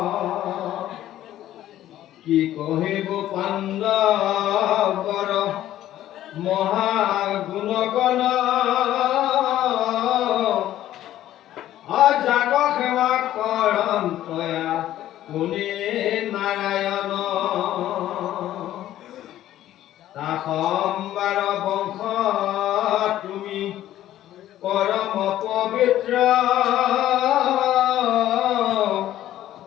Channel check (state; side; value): quieter; right; 13.1 dB